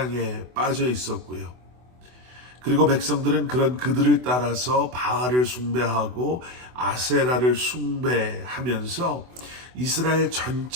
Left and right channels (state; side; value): late; left; 24 ms